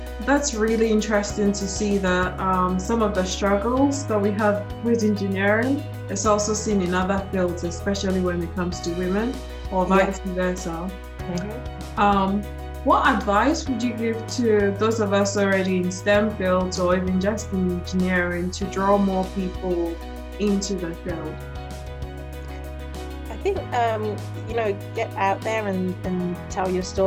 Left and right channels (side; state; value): both; identical; correlation 1.00